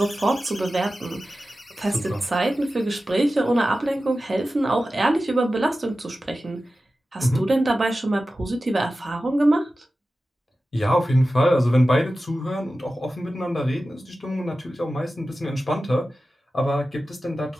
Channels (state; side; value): normal; both; correlation 0.94